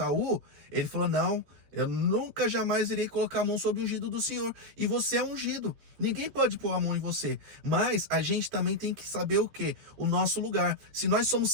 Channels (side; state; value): left; late; 13 ms